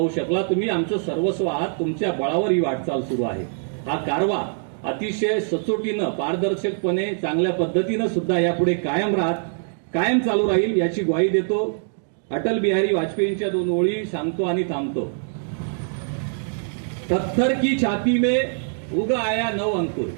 शकला. तुम्ही आमचं सर्वस्व आहात. तुमच्या बळावर ही वाटचाल सुरू आहे. हा कारवा अतिशय सचोटीनं पारदर्शकपणे चांगल्या पद्धतीनं सुद्धा यापुढे कायम चालू राहील याची ग्वाही देतो. अटल बिहारी वाजपेयींच्या 2 ओळी सांगतो आणि थांबतो. पत्थर की छाती में उग आया नव अंकुर,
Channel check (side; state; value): left; silent; digital silence